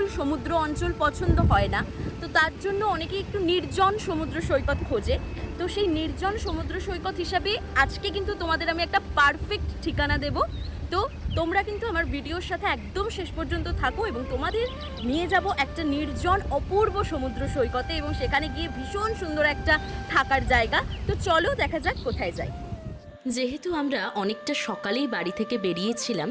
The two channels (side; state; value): both; identical; correlation 1.00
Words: সমুদ্র অঞ্চল পছন্দ হয় না, তো তার জন্য অনেকেই একটু নির্জন সমুদ্র সৈকত খোঁজে। তো সেই নির্জন সমুদ্র সৈকত হিসাবে আজকে কিন্তু তোমাদের আমি একটা পারফেক্ট ঠিকানা দেব। তো তোমরা কিন্তু আমার ভিডিওর সাথে একদম শেষ পর্যন্ত থাকো এবং তোমাদের নিয়ে যাব একটা নির্জন অপূর্ব সমুদ্র সৈকতে, এবং সেখানে গিয়ে ভীষণ সুন্দর একটা থাকার জায়গা। তো চলো দেখা যাক কোথায় যাই। যেহেতু আমরা অনেকটা সকালেই বাড়ি থেকে বেরিয়েছিলাম,